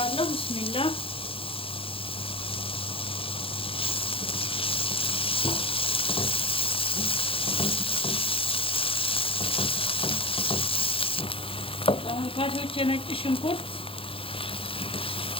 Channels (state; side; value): late; right; 0.27 ms